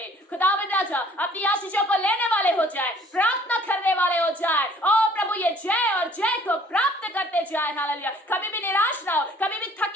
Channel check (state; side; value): normal; both; correlation 0.56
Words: खुदावंद राजा अपनी आशीषों को लेने वाले हो जाए, प्रार्थना करने वाले हो जाए। ओ प्रभु, ये जय और जय को प्राप्त करते जाए। हालेलुया। कभी भी निराश ना हो, कभी भी